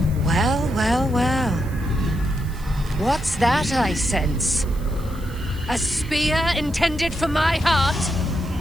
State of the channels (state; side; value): noise; right; hiss, 22 dB below the sound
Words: Well, well, well. What's that I sense? A spear intended for my heart?